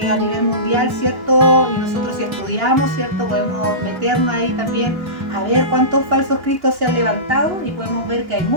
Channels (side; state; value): left; late; 2.9 ms